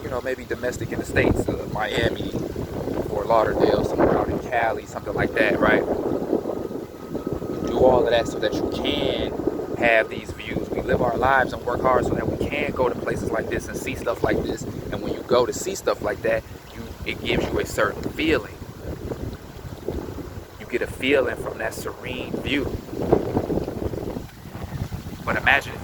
domestic in the States, Miami, Fort Lauderdale, somewhere out in Cali, something like that, right? Do all of that so that you can have these views. We live our lives and work hard so that we can go to places like this and see stuff like this. And when you go to see stuff like that, it gives you a certain feeling. You get a feeling from that serene view. But imagine if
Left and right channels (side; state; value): both; identical; correlation 1.00